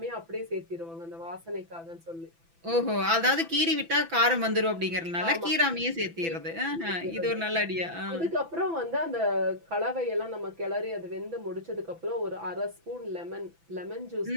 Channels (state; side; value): late; left; 6.0 ms